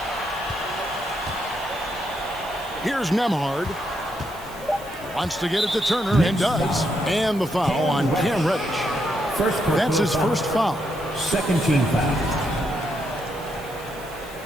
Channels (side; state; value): right; noise; hiss, 20 dB below the sound